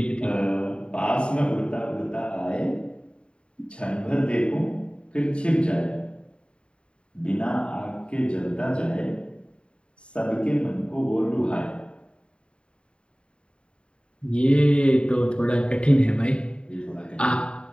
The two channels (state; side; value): late; right; 0.054 ms